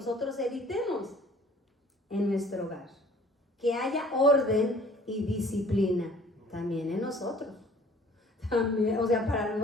evitemos en nuestro hogar. Que haya orden y disciplina también en nosotros. También, o sea, para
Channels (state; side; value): normal; both; correlation 0.53